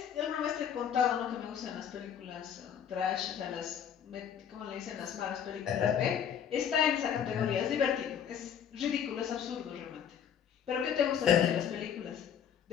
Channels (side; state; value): right; quieter; 8.5 dB